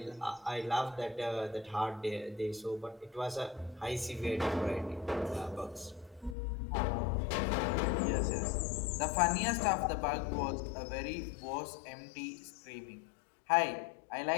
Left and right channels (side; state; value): right; drops out; at 6.4 s